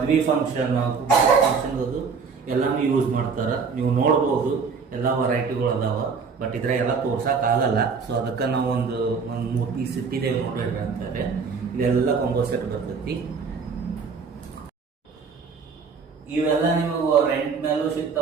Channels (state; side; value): quieter; left; 5.4 dB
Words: ಫಂಕ್ಷನ್, ಫಂಕ್ಷನ್ ಎಲ್ಲಾನು ಯೂಸ್ ಮಾಡ್ತಾರ. ನೀವು ನೋಡ್ಬೋದು ಎಲ್ಲ ವೆರೈಟಿಗಳು ಅದಾವ, ಬಟ್ ಇದ್ರ ಎಲ್ಲ ತೋರ್ಸಕ್ ಆಗಲ್ಲ. ಸೊ ಅದಕ್ಕೆ ನಾವು ಒಂದು 3 ಪೀಸ್ ಇಟ್ಟಿದ್ದೇವೆ ನೋಡ್ರಿ ಅಂತಾರೆ. ಇದೆಲ್ಲ ಕಾಂಬೋ ಸೆಟ್ ಬರ್ತೈತಿ. ಇವೆಲ್ಲ ನಿಮಗೆ ರೆಂಟ್ ಮೇಲೂ